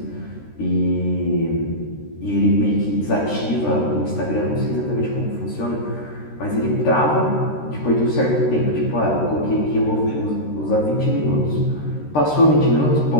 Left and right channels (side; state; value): right; late; 13 ms